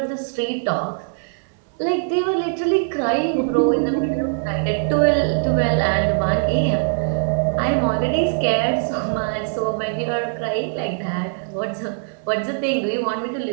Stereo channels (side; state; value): left; silent; digital silence